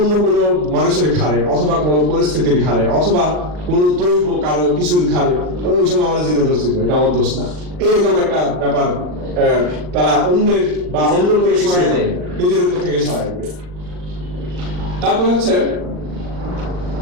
কোনো মানুষের ঘাড়ে অথবা কোনো পরিস্থিতির ঘাড়ে অথবা কোনো দৈব কারো কিছুর ঘাড়ে ওই সময় আমার জিনে ধরছিল, এটা আমার দোষ না, এরকম একটা ব্যাপার তারা অন্যের বা অন্য কোনো কিছু নিজের উপর থেকে সরাই দেবে। তারপরে হচ্ছে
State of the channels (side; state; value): left; late; 39 ms